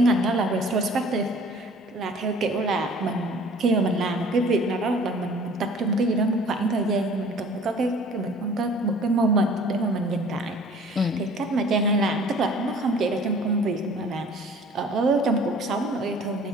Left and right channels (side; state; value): both; normal; correlation 0.50